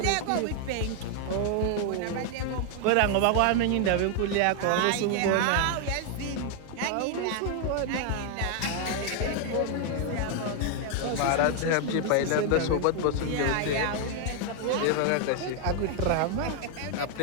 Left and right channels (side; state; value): both; different; correlation 0.00